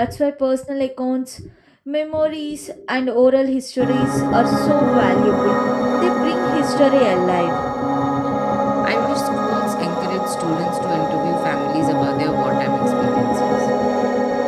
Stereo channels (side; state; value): both; identical; correlation 1.00